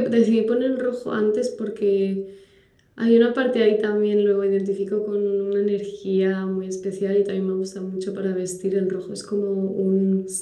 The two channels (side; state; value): both; identical; correlation 1.00